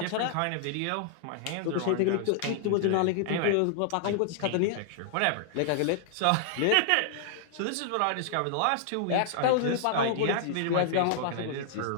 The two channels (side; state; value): both; different; correlation -0.01